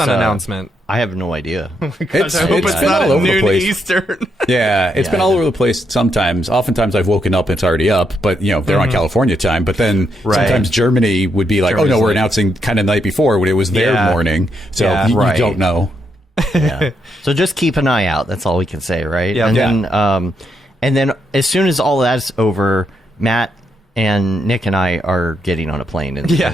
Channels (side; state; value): both; normal; correlation 0.79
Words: there's, announcement? I have no idea. It's I hope it's been not all at over the noon place. Eastern. Yeah, it's been all over the place sometimes. Oftentimes I've woken up, it's already up, but they're on California time. But then Right. sometimes Germany would be like, Germany's oh no, we're late. announcing kind of the night before when it was their Yeah. morning. So Yeah. you Right. don't know. Yeah. So just keep an eye out. That's all we can say, right? Yeah. And Yeah. then as soon as all that's over, Matt and Nick and I are getting on a plane and